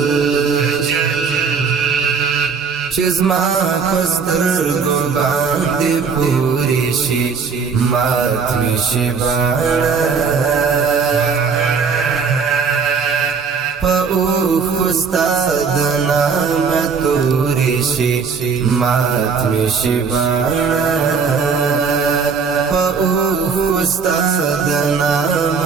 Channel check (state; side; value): quieter; left; 5.6 dB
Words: چې زما په سترګو باندې پورې شي مات مې شي باڼه په اوښو ستا د نامه تورې شي مات مې شي باڼه په اوښو ستا د